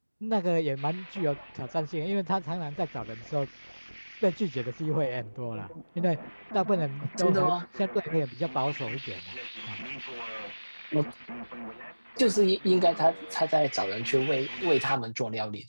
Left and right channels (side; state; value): both; inverted; correlation -1.00